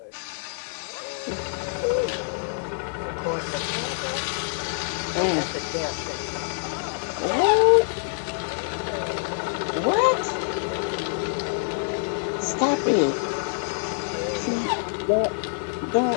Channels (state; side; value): silent; right; 61 dB below the other